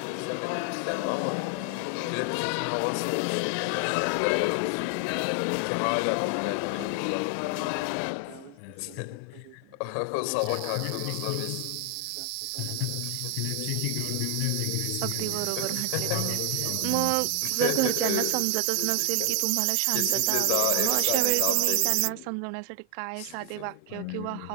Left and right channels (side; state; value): both; different; correlation 0.00